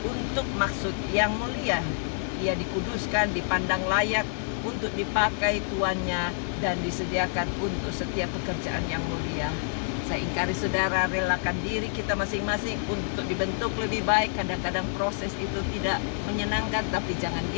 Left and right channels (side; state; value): right; silent; digital silence